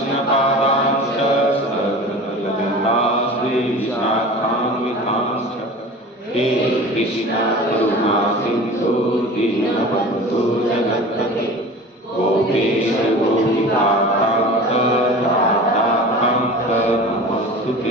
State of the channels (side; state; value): both; normal; correlation 0.37